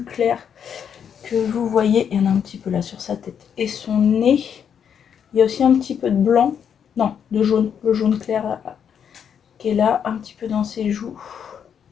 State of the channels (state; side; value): quieter; right; 8.0 dB